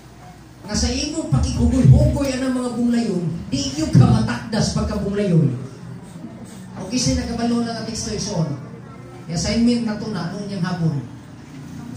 Nga sa imong pakigugoy-hugoy ang mga bunglayon, di iyo ka matakdas pagkabunglayon. O kasi nakabalo lang ang teksto ison. Assignment na ito na, noon yung hapon.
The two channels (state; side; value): identical; both; correlation 1.00